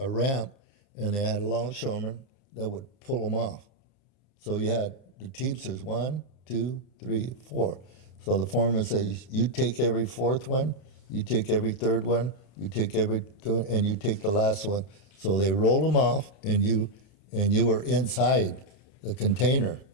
ramp, and they had a longshoreman that would pull them off. So you had the teamsters 1, 2, 3, 4. So the foreman says, you take every 4th one, you take every 3rd one, you take and you take the last one. So they roll them off, and you were inside the container,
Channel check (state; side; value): late; right; 30 ms